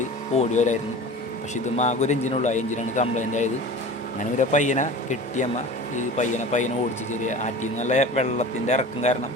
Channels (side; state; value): both; normal; correlation 0.37